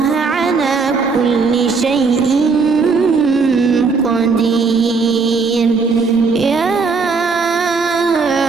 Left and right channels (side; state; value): left; quieter; 4.7 dB